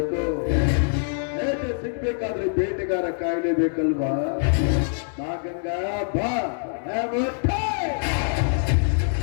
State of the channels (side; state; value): right; silent; digital silence